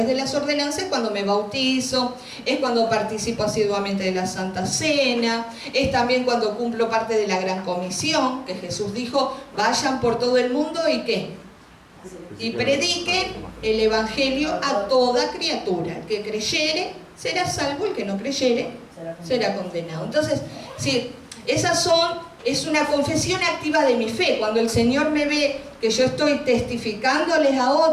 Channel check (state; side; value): identical; both; correlation 1.00